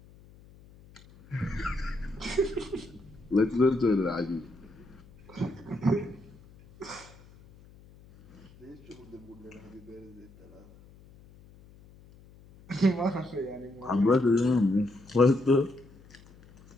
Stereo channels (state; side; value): noise; left; hum, 24 dB below the sound